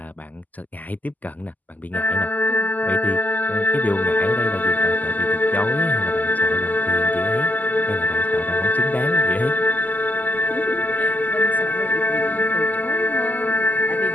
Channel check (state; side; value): late; right; 0.081 ms